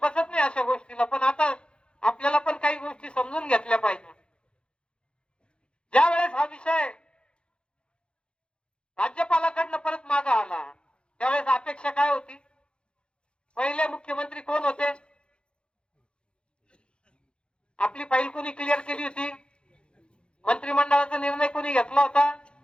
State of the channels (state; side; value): late; right; 0.055 ms